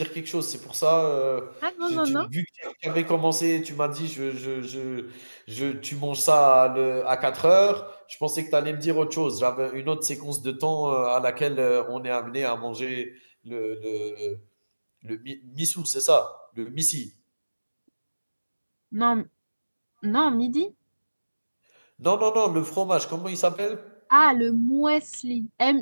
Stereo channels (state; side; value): inverted; both; correlation -1.00